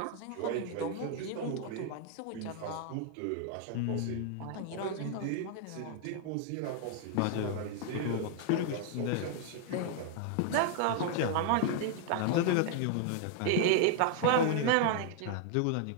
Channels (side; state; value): both; different; correlation 0.00